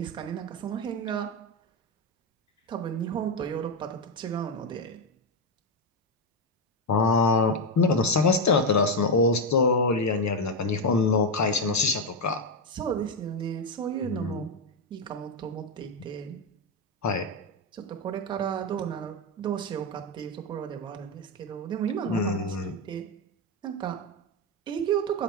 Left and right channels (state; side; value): normal; both; correlation 0.07